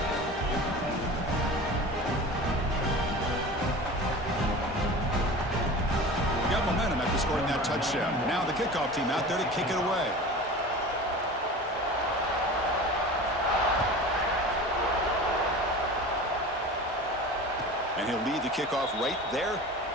Scoring that touchdown. Now the kickoff team out there to kick it away. And he'll lead the kickoff right there.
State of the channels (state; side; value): normal; both; correlation 0.35